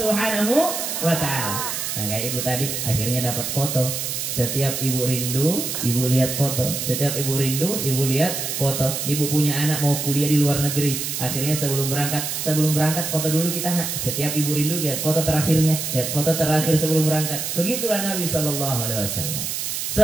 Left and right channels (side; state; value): right; noise; hiss, 3 dB below the sound